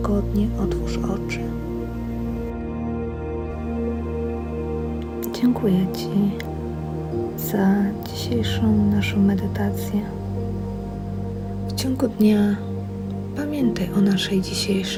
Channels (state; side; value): identical; both; correlation 1.00